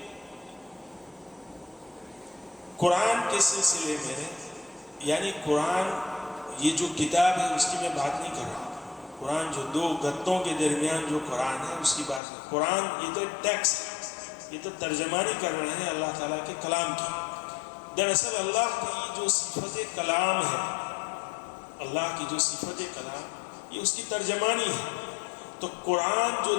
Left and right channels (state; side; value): drops out; right; at 12.2 s